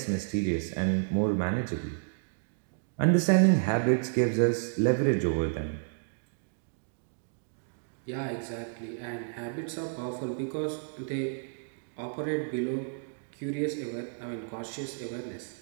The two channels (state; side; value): silent; left; digital silence